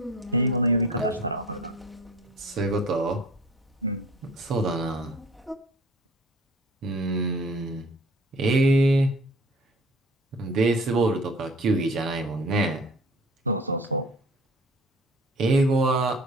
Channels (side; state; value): both; normal; correlation 0.45